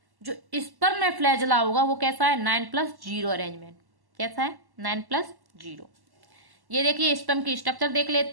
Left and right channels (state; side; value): late; left; 1.1 ms